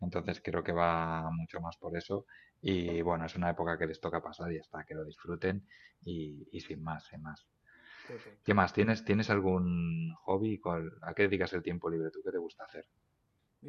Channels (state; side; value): identical; both; correlation 1.00